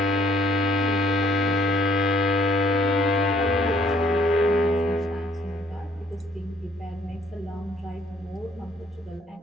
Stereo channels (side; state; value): both; normal; correlation 0.63